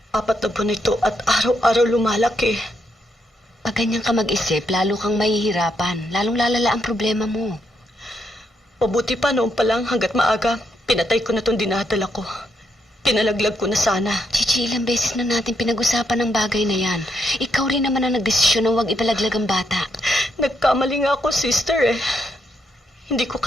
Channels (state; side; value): normal; both; correlation 0.78